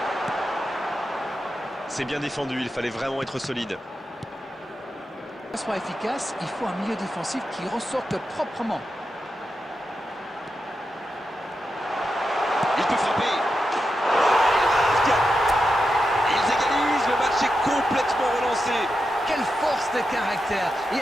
C'est bien défendu, il fallait vraiment être solide. Pour que ça soit efficace, il faut un milieu défensif qui ressorte proprement. Il peut frapper. Il marque. Ils égalisent, le match est complètement relancé. Quelle force de caractère. Et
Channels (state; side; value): normal; both; correlation 0.88